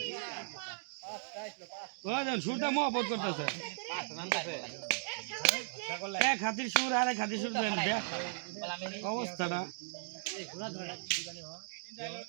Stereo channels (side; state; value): left; silent; digital silence